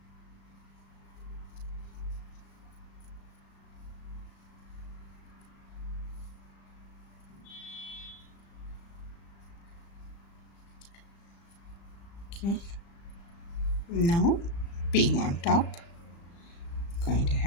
Okay, now pink on top, going to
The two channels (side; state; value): right; late; 35 ms